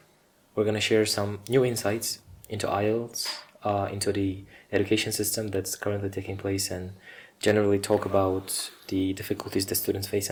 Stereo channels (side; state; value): both; identical; correlation 1.00